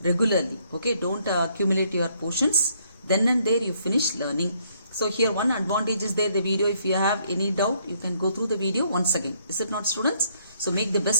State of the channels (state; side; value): inverted; both; correlation -0.69